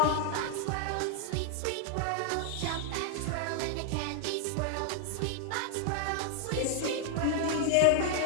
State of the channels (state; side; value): different; both; correlation 0.00